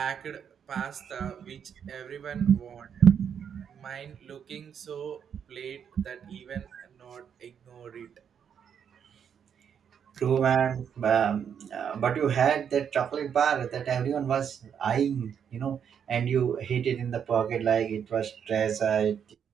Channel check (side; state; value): left; quieter; 7.9 dB